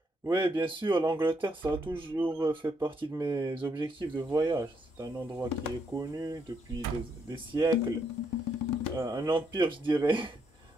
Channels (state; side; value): normal; both; correlation 0.75